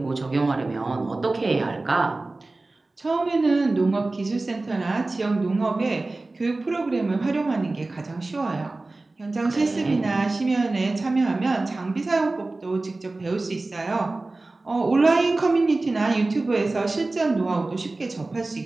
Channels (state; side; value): quieter; left; 3.2 dB